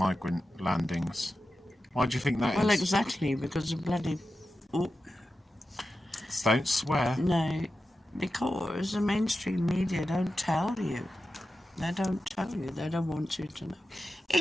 landings. Why do you think that Well, is? exactly, because of bloody... Oh, Don't swear. no, because the mainstream media don't tell you. They don't tell you. They don't want you to know.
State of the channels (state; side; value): normal; both; correlation 0.92